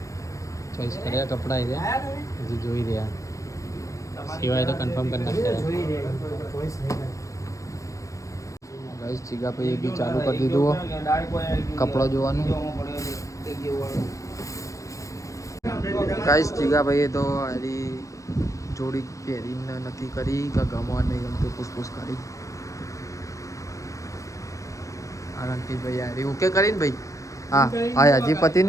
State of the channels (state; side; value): late; right; 0.15 ms